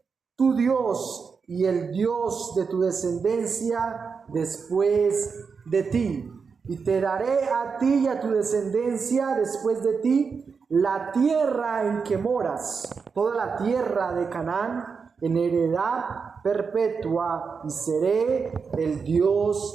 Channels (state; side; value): quieter; left; 5.5 dB